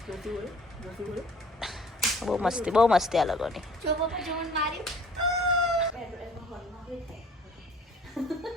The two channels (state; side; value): normal; both; correlation 0.53